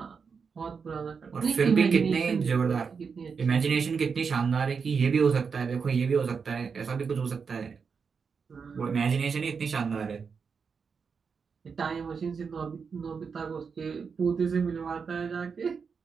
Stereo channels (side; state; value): left; quieter; 5.7 dB